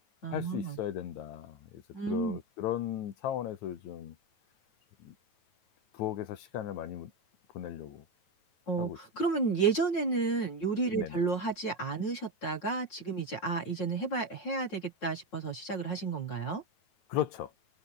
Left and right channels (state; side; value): late; right; 9.2 ms